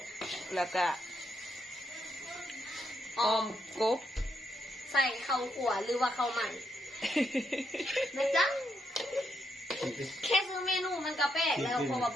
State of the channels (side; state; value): both; normal; correlation 0.79